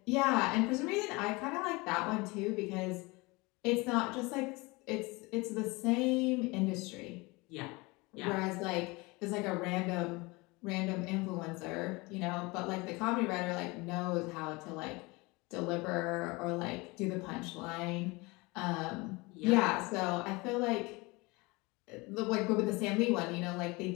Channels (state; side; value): quieter; right; 24.7 dB